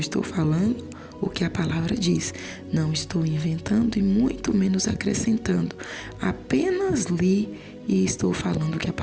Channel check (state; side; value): identical; both; correlation 1.00